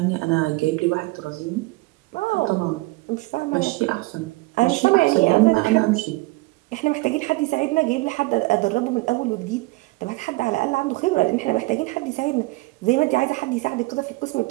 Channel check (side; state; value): left; quieter; 22.6 dB